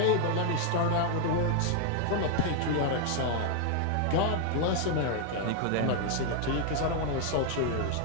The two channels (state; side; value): different; both; correlation 0.00